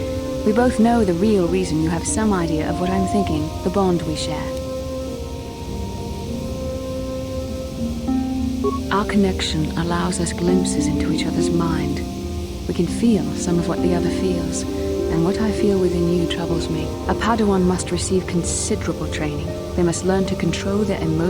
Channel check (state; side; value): identical; both; correlation 1.00